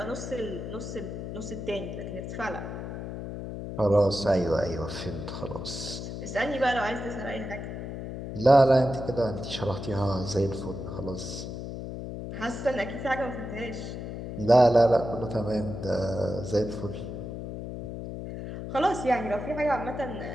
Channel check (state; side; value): noise; left; hum, 7 dB below the sound